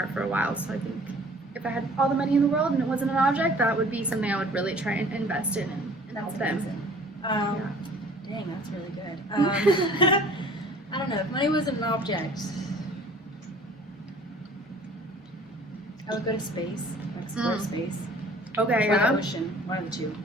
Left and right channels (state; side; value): normal; both; correlation 0.51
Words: for a while. So I think if I had all the money in the world and it wasn't an object, that would be something I would really try and invest in and help them. Amazing. Dang, that's really good. I don't know. If money wasn't an object, I would go to space, explore space, Okay, or yeah, the ocean, one of the two.